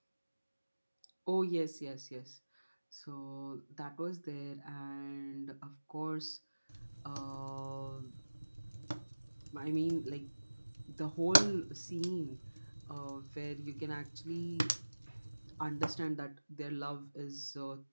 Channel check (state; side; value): inverted; both; correlation -1.00